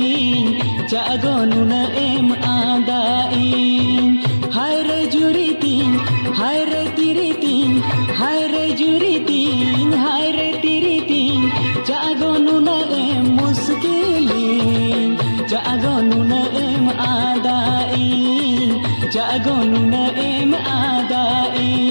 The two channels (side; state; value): both; inverted; correlation -1.00